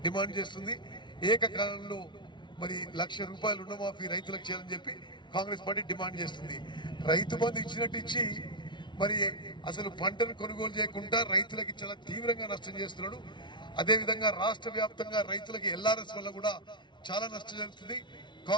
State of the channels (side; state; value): right; late; 0.23 ms